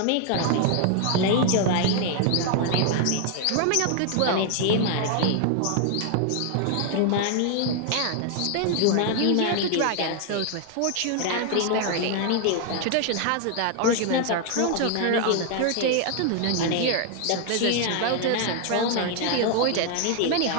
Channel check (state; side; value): different; both; correlation 0.00